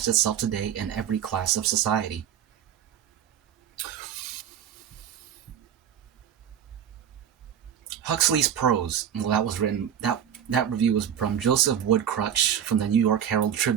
itself today in every class of society. Huxley's prose, well, that review was from Joseph Woodcrutch from the New York Herald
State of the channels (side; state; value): left; quieter; 9.3 dB